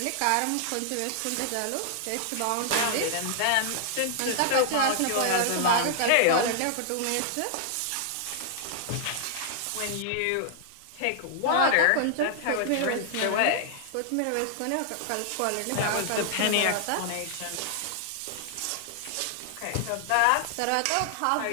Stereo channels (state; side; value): different; both; correlation 0.00